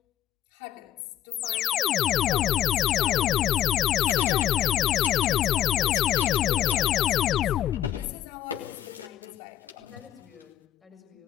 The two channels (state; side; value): quieter; right; 11.7 dB